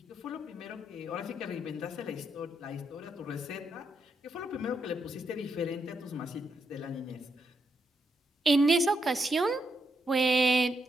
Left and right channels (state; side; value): normal; both; correlation 0.80